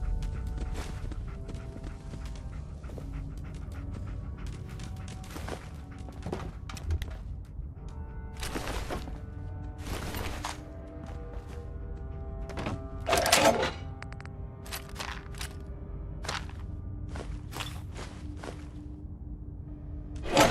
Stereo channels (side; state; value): both; identical; correlation 1.00